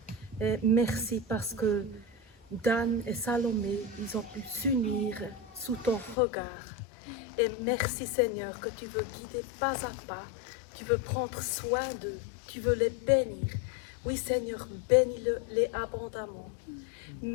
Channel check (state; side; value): drops out; right; at 6.2 s